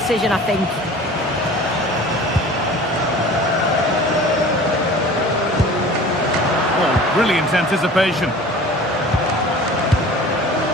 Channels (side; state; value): both; normal; correlation 0.43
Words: I think. Oh, brilliant anticipation.